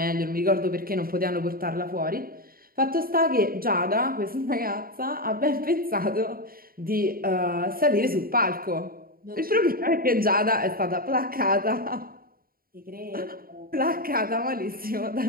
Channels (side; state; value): left; late; 0.43 ms